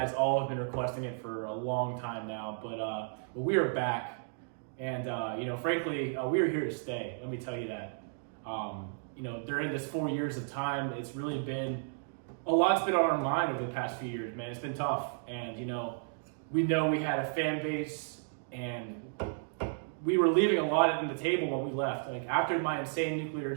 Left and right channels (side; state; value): left; silent; digital silence